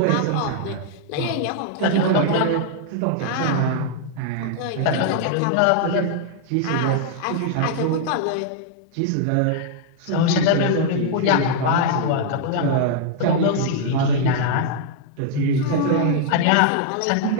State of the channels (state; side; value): different; both; correlation -0.01